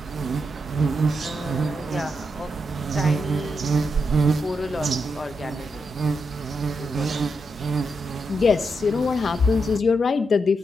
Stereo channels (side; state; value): both; normal; correlation 0.83